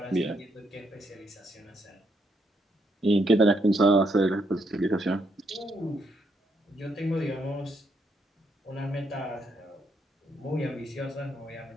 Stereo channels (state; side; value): normal; both; correlation 0.76